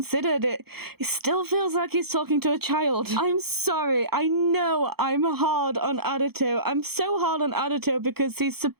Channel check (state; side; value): late; left; 0.96 ms